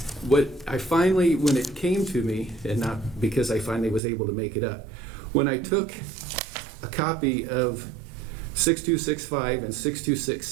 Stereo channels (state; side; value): drops out; left; at 4.0 s